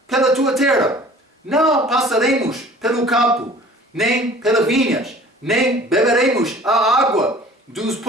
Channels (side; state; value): both; normal; correlation 0.48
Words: pela tua terra. Não passaremos pelo campo, nem pelas vinhas, nem beberemos a água dos